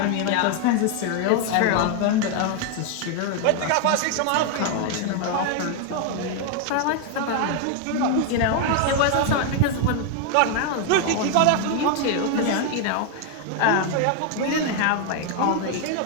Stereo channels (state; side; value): different; both; correlation 0.01